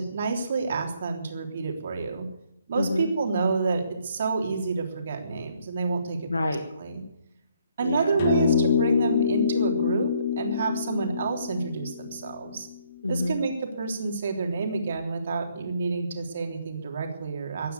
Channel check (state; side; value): inverted; both; correlation -0.68